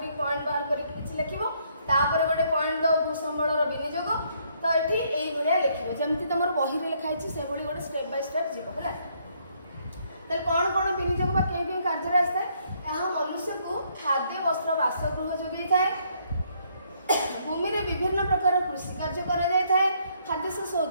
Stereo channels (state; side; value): inverted; both; correlation -0.69